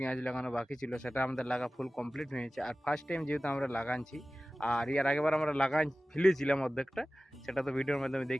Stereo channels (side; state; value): both; normal; correlation 0.97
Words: লাগানো বাকি ছিল সেটা আমাদের লাগা ফুল কমপ্লিট হয়েছে। আর ফার্স্ট টাইম যেহেতু আমরা লাগাচ্ছি, আর এর আগেবার আমরা লাগাই ফেলেছিলাম অর্ধেকটা, সেটা তো ভিডিওর মাধ্যমে